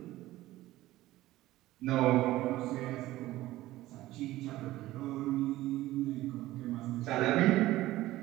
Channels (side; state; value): left; quieter; 16.4 dB